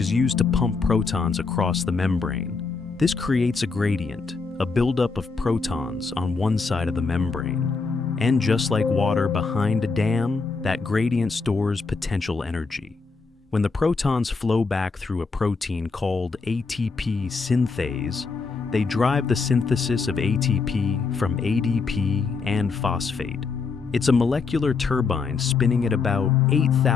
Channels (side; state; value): right; quieter; 4.6 dB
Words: used to pump protons across the membrane. This creates a gradient, a buildup of protons on one side of the membrane. And just like water behind a dam, that gradient stores potential energy. When the protons flow back through a protein called ATP synthase, they drive the synthesis of ATP from ADP and phosphate. It's a molecular turbine spinning at about